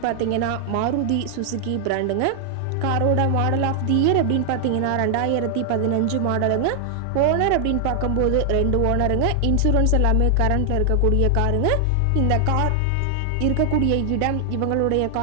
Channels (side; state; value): both; different; correlation 0.00